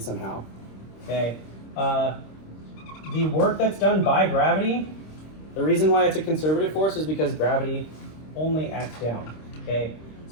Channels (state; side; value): late; right; 26 ms